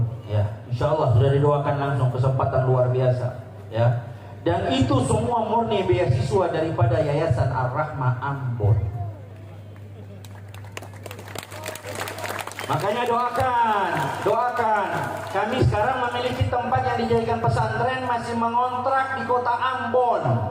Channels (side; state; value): both; identical; correlation 1.00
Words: ya. Insyaallah sudah didoakan langsung, kesempatan luar biasa ya. Dan itu semua murni beasiswa daripada Yayasan Ar-Rahmah Ambon. Makanya doakan. Kami sekarang memiliki tempat yang dijadikan pesantren, masih mengontrak di kota Ambon.